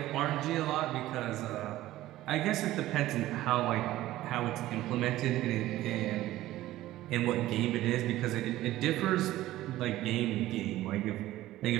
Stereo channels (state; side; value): quieter; left; 15.5 dB